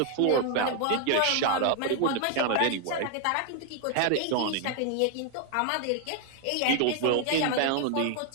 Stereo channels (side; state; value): both; different; correlation 0.00